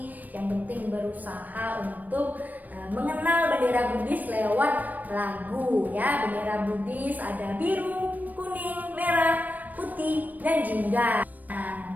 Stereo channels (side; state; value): left; late; 0.083 ms